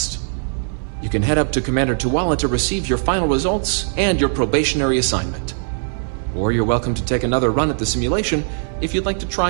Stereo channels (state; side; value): silent; left; 59 dB below the other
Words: You can head up to Commander Tuala to receive your final results and your probationary assignment. Or you're welcome to take another run at the simulation if you'd like to